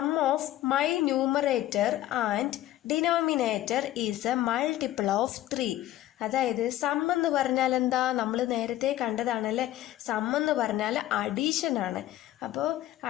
of my numerator and denominator is a multiple of 3. അതായത് സം എന്ന് പറഞ്ഞാൽ എന്താ? നമ്മൾ നേരത്തെ കണ്ടതാണല്ലേ. സം എന്ന് പറഞ്ഞാൽ അഡീഷൻ ആണ്. അപ്പോൾ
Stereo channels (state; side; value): quieter; right; 14.2 dB